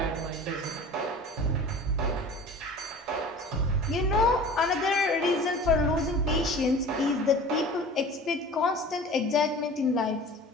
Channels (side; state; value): both; normal; correlation 0.40